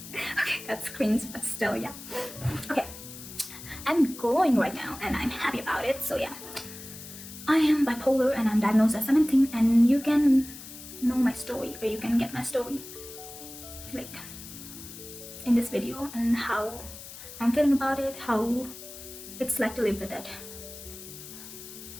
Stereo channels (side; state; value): left; noise; hiss, 14 dB below the sound